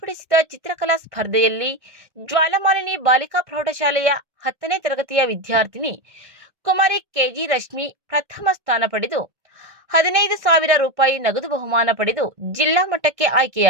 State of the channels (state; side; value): late; left; 1.6 ms